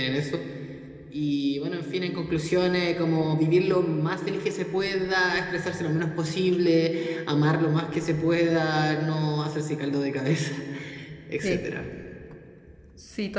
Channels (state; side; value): identical; both; correlation 1.00